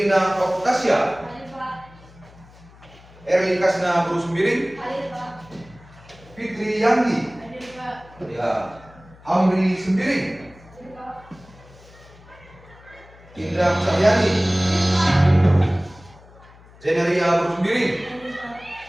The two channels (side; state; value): left; noise; hum, 24 dB below the sound